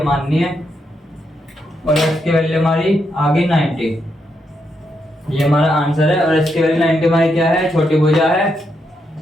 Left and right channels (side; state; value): both; normal; correlation 0.81